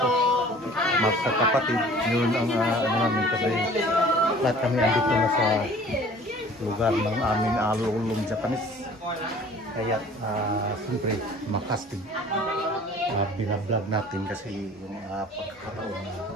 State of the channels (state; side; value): normal; both; correlation 0.49